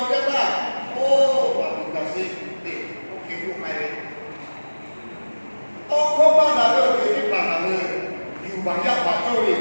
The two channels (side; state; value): both; inverted; correlation -1.00